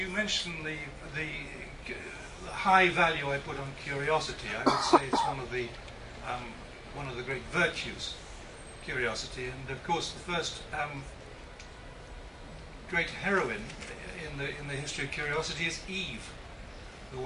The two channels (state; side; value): identical; both; correlation 1.00